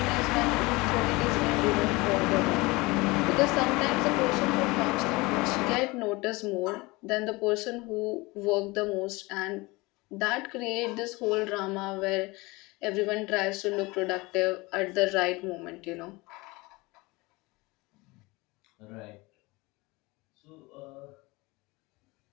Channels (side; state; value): right; quieter; 23.3 dB